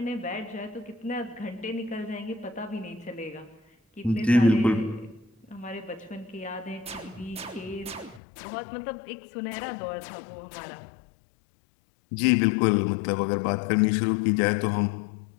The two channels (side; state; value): right; drops out; at 8.2 s